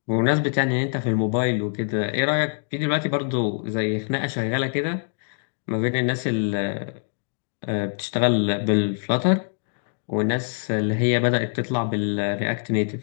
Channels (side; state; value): right; silent; digital silence